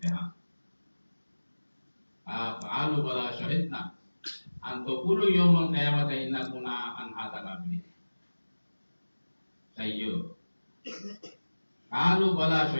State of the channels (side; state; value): both; inverted; correlation -1.00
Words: qalu bala syahidna an taqulu yawmal qiyamati inna kunna an hadza ghafilin sayyo qalu bala